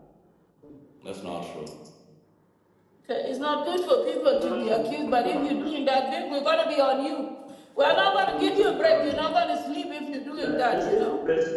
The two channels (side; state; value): both; identical; correlation 1.00